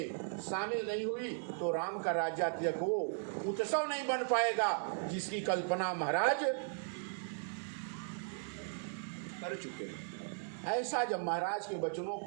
शामिल नहीं हुई, तो राम का राज्य तिलक वो उत्सव नहीं बन पाएगा जिसकी कल्पना महाराज कर चुके हैं। ऐसा जब महाराज के वचनों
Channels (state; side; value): silent; left; digital silence